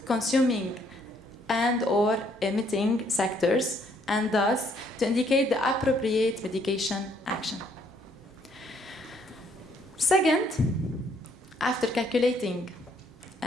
consuming and/or emitting sectors, and thus to indicate the appropriate mitigation action. Second, after calculating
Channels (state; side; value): normal; both; correlation 0.67